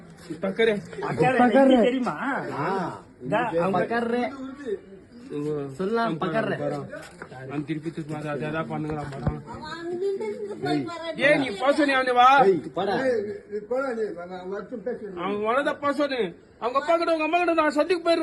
பக்கரே தெரியுமா? பக்கர்ரே சொல்லலாம் பக்கர்ரே நான் திருப்பி திருப்பி அதா பண்ணுங்கறான் படம் ஏய் நீ பாசனி அவனே வா போடா அவன் வளத பாசனி அவங்க அப்பா கிட்ட உங்க அம்மா கிட்ட நான் சந்திக்கு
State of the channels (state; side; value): identical; both; correlation 1.00